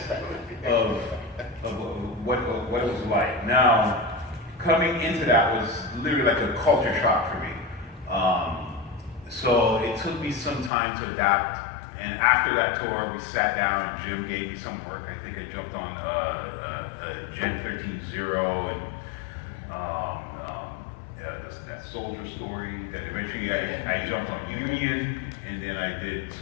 of what it was like. Now, coming into that was literally like a culture shock for me. So it took me some time to adapt. And after that tour, we sat down and Jim gave me some work. I think I jumped on Gen 13.0 and that soldier story. That eventually I jumped on Union, and then I did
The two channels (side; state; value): right; drops out; at 10.7 s